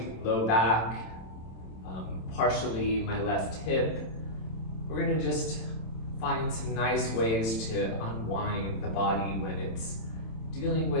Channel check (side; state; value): right; late; 27 ms